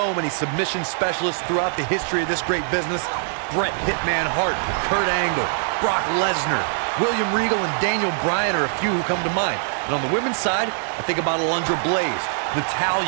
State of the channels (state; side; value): silent; left; digital silence